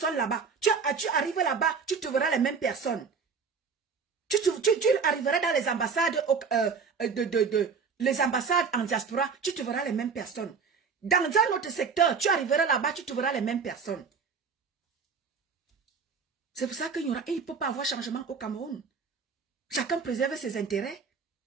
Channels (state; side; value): quieter; left; 5.6 dB